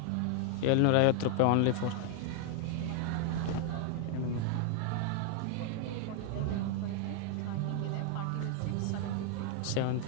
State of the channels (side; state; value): both; different; correlation 0.00